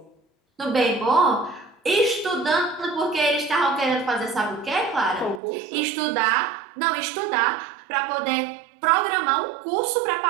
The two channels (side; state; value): left; drops out; at 5.4 s